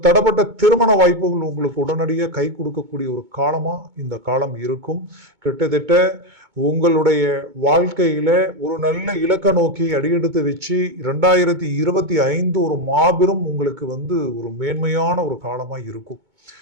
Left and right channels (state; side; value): late; left; 2.2 ms